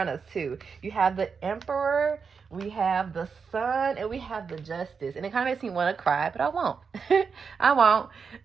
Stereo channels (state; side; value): quieter; left; 5.7 dB